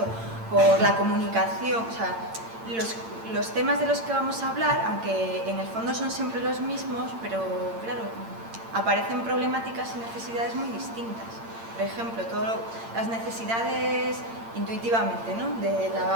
por la comunicación, o sea, los temas de los que vamos a hablar, aunque en el fondo son siempre los mismos, pero claro, aparecen problemáticas y necesidades muy distintas. Por ejemplo, todas las necesidades intuitivamente, ¿no? De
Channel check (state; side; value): late; left; 8.8 ms